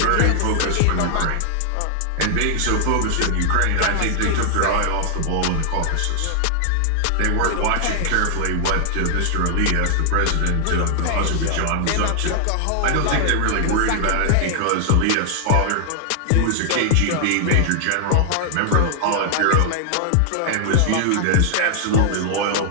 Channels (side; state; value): both; different; correlation 0.00